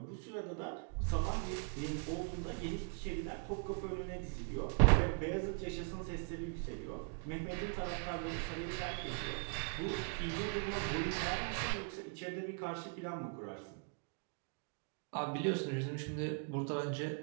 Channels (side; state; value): left; quieter; 39.5 dB